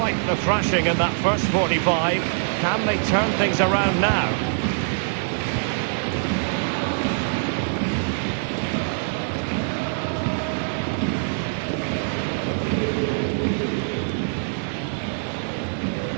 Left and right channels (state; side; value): silent; left; 63 dB below the other